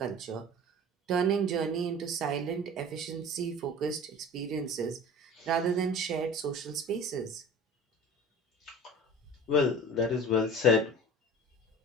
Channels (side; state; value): both; normal; correlation 0.39